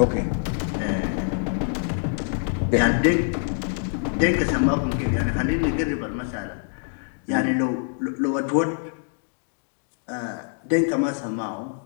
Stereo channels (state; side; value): silent; right; digital silence